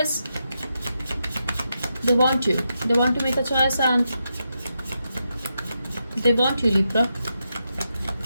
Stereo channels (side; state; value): both; inverted; correlation -0.85